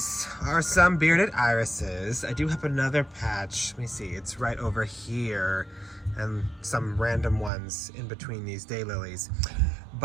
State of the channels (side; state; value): left; drops out; at 7.5 s